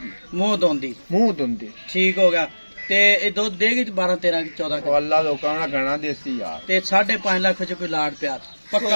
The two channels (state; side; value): inverted; both; correlation -1.00